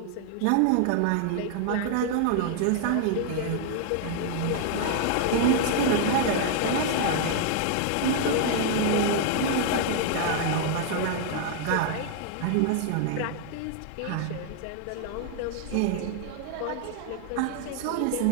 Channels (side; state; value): both; different; correlation 0.00